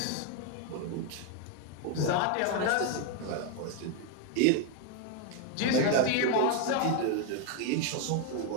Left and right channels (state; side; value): different; both; correlation 0.01